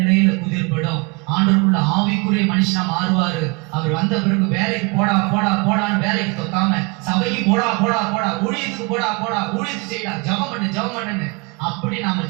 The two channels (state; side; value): quieter; left; 28.6 dB